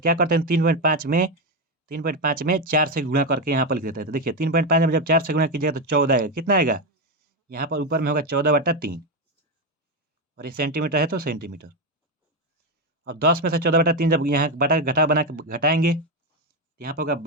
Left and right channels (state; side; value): normal; both; correlation 0.09